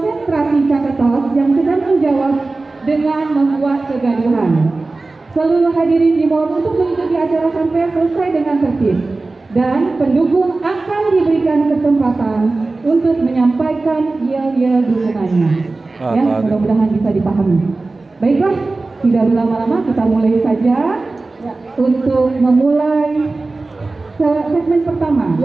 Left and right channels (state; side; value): quieter; left; 3.4 dB